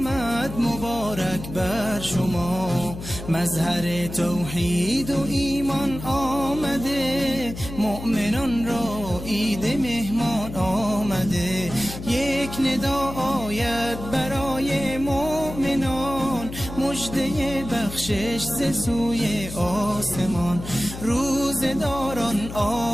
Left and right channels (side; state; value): left; noise; hum, 11 dB below the sound